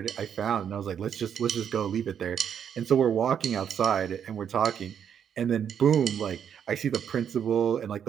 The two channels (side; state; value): left; quieter; 8.4 dB